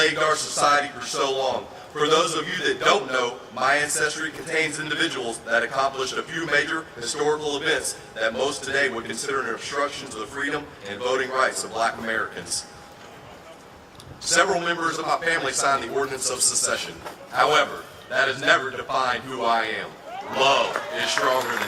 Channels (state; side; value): identical; both; correlation 1.00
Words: our society for so long. For those of you that don't know, my ancestry contains individuals that accomplished a few major historical events that most today would consider an obstruction to the freedom and voting rights of Black Americans. Several members of my family signed the Ordinance of Secession. However, that has never defined who I am. Love is stronger